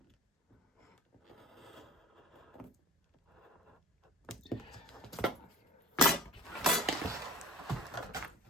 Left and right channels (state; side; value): normal; both; correlation 0.41